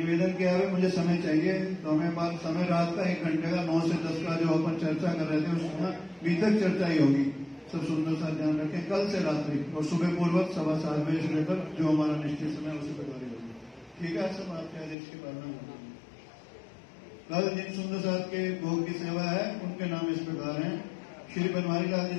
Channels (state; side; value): drops out; right; at 15.0 s